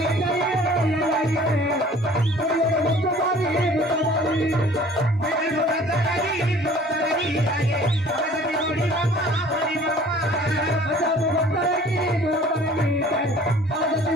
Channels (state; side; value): normal; both; correlation 0.50